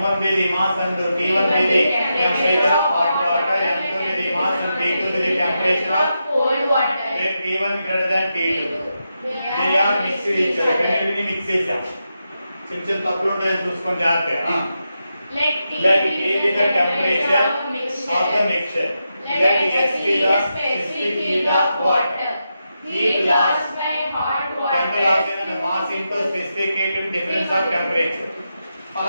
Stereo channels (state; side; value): inverted; both; correlation -0.87